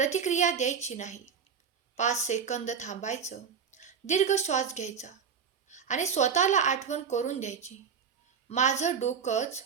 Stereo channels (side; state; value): left; quieter; 6.8 dB